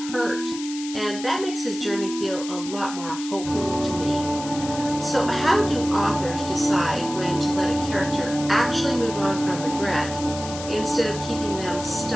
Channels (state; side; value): noise; left; hiss, 11 dB below the sound